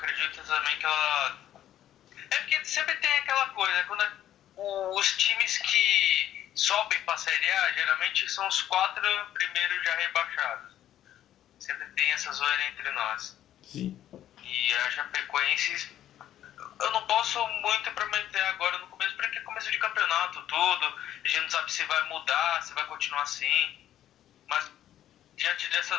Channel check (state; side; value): quieter; right; 11.8 dB